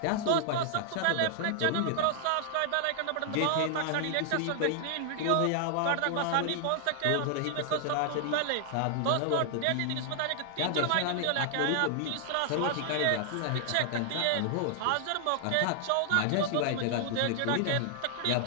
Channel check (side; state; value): both; different; correlation 0.00